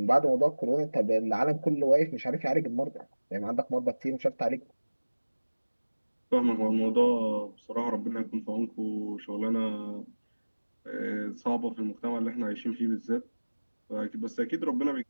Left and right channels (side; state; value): both; inverted; correlation -1.00